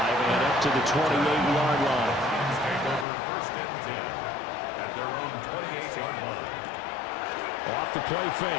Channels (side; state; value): right; drops out; at 3.1 s